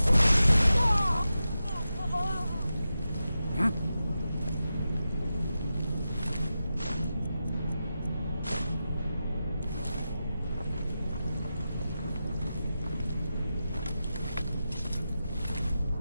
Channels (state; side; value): inverted; both; correlation -0.91